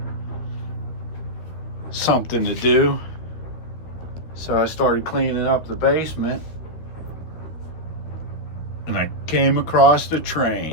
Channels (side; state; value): right; late; 12 ms